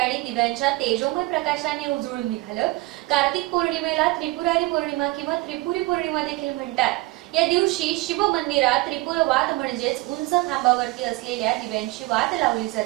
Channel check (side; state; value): left; quieter; 21.1 dB